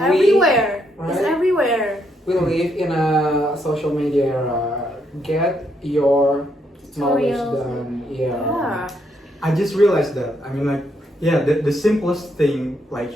It's right? everywhere. We live in a social media era. Get your knowledge Tutorials. done. Yeah. Yeah. I just realized that. I mean, like, yeah, the simplest thing like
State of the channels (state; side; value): normal; both; correlation 0.76